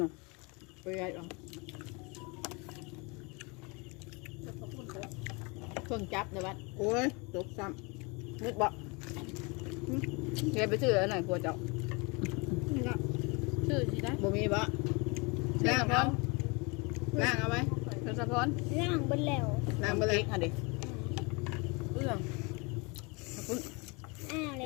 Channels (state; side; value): quieter; right; 29.1 dB